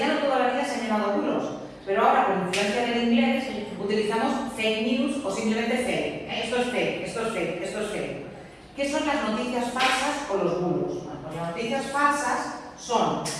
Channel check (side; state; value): both; identical; correlation 1.00